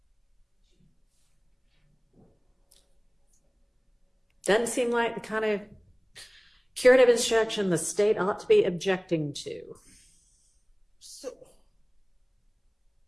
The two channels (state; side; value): identical; both; correlation 1.00